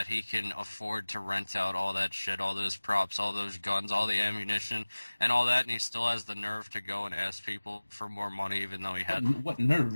he can afford to rent out all that shit, all those props, all those guns, all the ammunition, and all that, and he still has the nerve to go and ask people for more money even though he had... What nerve?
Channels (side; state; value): both; inverted; correlation -1.00